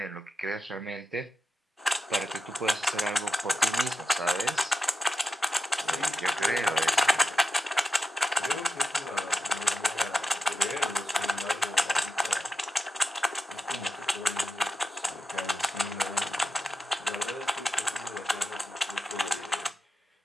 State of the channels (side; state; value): both; normal; correlation 0.89